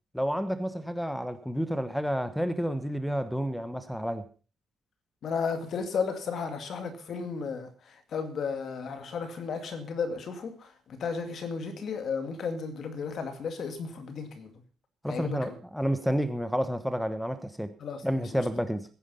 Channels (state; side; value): normal; both; correlation 0.88